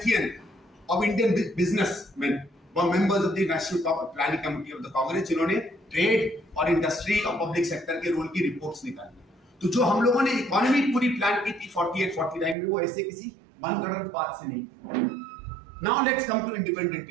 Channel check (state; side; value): drops out; left; at 12.6 s